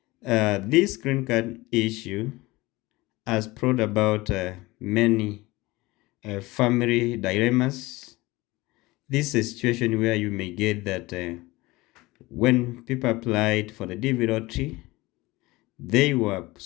this green card issue has brought about many family dilemmas. This is a situation where you may get that when people applied for the DV lottery, they were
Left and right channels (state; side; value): quieter; right; 20.9 dB